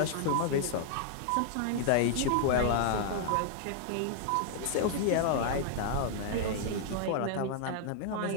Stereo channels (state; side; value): different; both; correlation -0.01